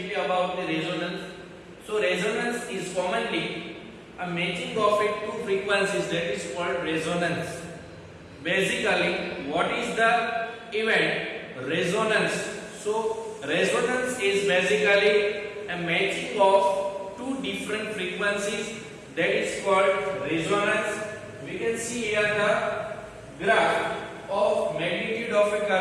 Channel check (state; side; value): identical; both; correlation 1.00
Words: about the resonance. So resonance is commonly a matching of two frequencies, that is called resonance. Basically, what is the event? Resonance. So resonance is basically a matching of two different frequencies, that is called resonance. We can see here the graph of magnitude of a